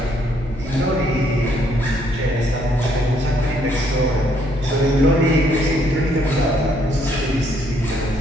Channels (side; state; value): both; normal; correlation 0.69